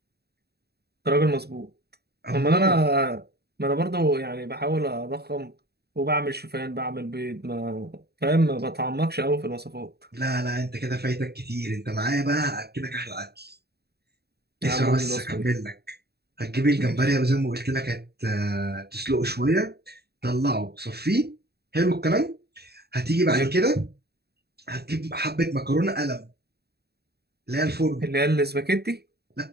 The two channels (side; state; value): left; late; 0.47 ms